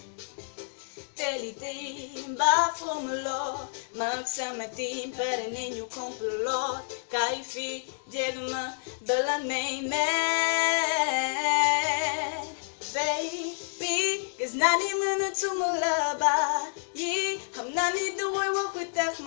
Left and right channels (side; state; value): right; silent; digital silence